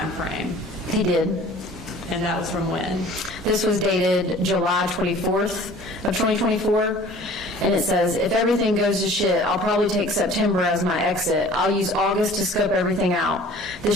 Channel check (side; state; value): both; normal; correlation 0.48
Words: frame? He did. And that was from when? This was dated July 24th of 2024. And it says, if everything goes to shit, I'll probably take September as my exit. I'll use August to scope everything out.